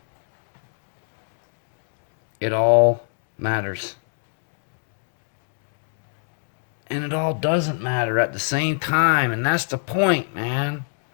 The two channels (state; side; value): silent; right; digital silence